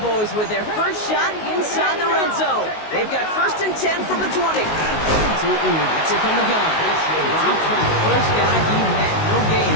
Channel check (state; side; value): late; right; 19 ms